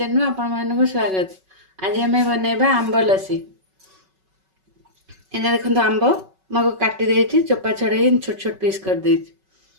में आपण मानक स्वागत। आज आम बनैबा आंब लस्सी। एना देखो आंब मको काटी देछि, चोपा छड़े छोट छोट पीस कर देछि।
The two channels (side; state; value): left; late; 5.3 ms